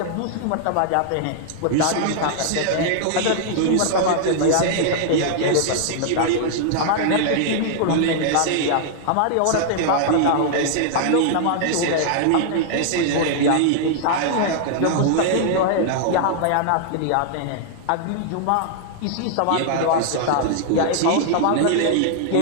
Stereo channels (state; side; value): different; both; correlation -0.01